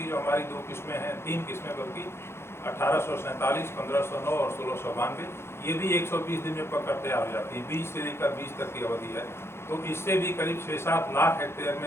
जो हमारी 2 किस्में हैं, 3 किस्में बल्कि 1847, 1509 और 1692, ये भी 120 दिन में पककर तैयार हो जाती है। 20 से लेकर 20 तक की अवधि है। तो इससे भी करीब 6-7 लाख हेक्टेयर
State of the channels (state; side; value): late; right; 0.12 ms